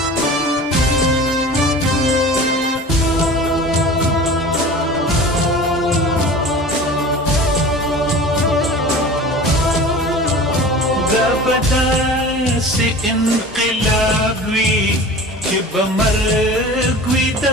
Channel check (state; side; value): normal; both; correlation 0.38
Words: دا به داسې انقلاب وي چې به مرګ وي د